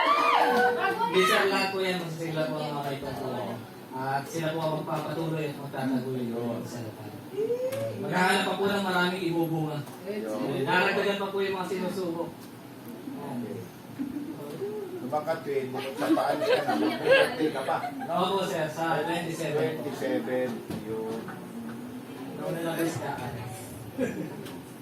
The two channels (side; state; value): both; identical; correlation 1.00